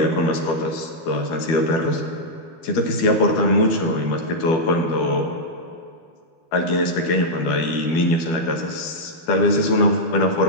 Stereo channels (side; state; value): right; late; 12 ms